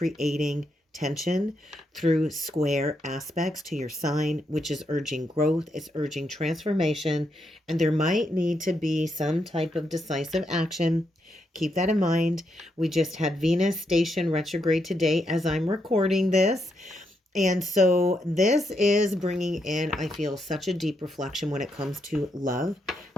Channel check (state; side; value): normal; both; correlation 0.80